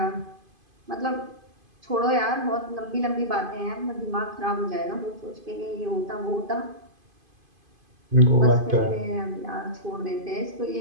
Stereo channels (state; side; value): late; left; 2.5 ms